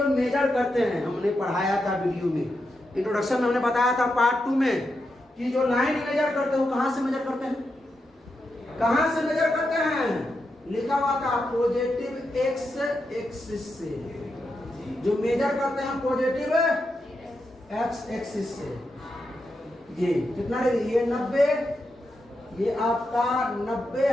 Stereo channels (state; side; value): normal; both; correlation 0.86